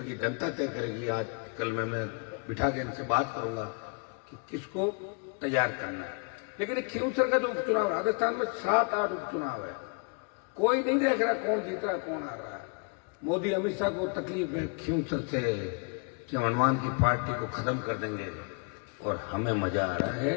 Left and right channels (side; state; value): right; quieter; 36.7 dB